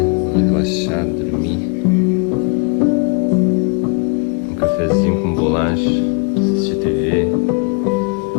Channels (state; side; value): quieter; right; 32.5 dB